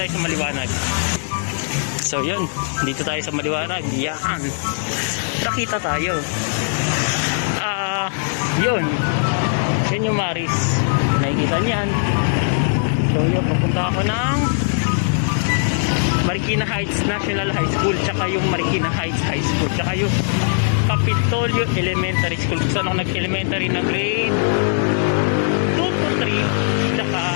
sa maliwanag. So yun, dito tayo sa maliwanag. Yan. Nakita tayo. Yun. Yan yung Maris. Nakikita niyan. So yun, papunta ako ng Marikina Heights National High School, tsaka yung Marikina Heights High School, tsaka yung Kapitolyo Elementary School. Kung saan ako nag-elementary na grade 2, 3, tsaka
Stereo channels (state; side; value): silent; right; digital silence